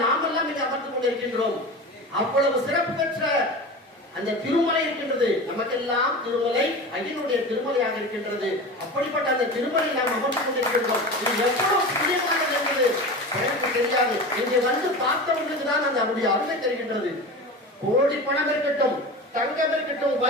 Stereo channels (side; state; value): both; normal; correlation 0.30